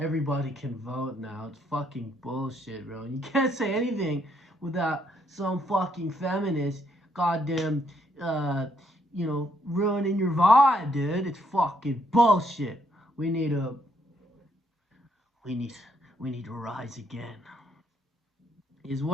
can vote now. It's fucking bullshit, bro. And you can't say anything without some fucking feminist goddamn uh ruining your vibe, dude. It's fucking bullshit. We need a we need we need to rise again. Is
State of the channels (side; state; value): both; normal; correlation 0.72